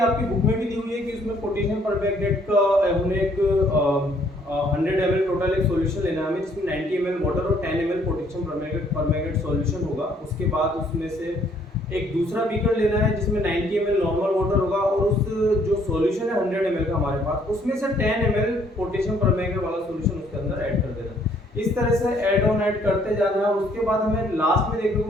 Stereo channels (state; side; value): normal; both; correlation 0.64